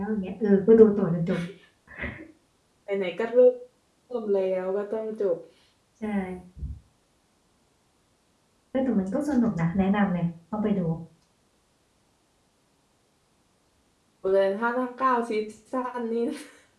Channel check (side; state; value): both; identical; correlation 1.00